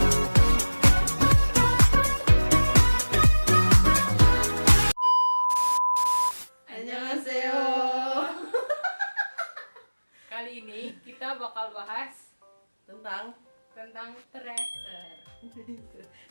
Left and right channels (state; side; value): inverted; both; correlation -1.00